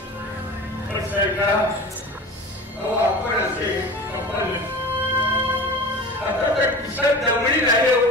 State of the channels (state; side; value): normal; both; correlation 0.35